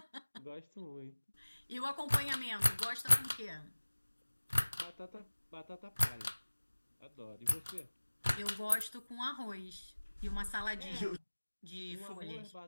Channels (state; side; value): inverted; both; correlation -1.00